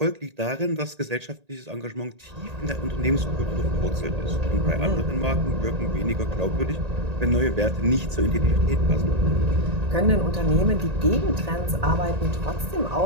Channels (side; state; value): left; late; 1.8 ms